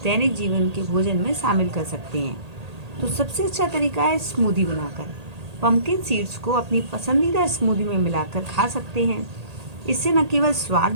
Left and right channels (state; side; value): late; left; 1.8 ms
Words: दैनिक जीवन के भोजन में शामिल कर सकते हैं। तो सबसे अच्छा तरीका है स्मूदी बनाकर। पंपकिन सीड्स को अपनी पसंदीदा स्मूदी में मिलाकर खा सकते हैं। इससे न केवल स्वाद